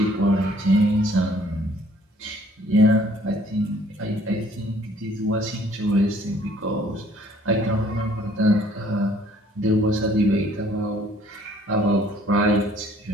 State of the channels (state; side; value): normal; both; correlation 0.59